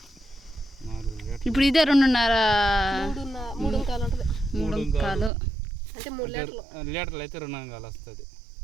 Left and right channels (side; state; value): left; drops out; at 5.3 s